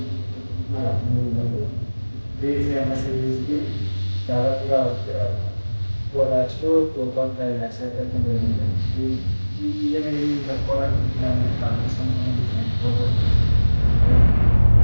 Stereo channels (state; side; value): inverted; both; correlation -1.00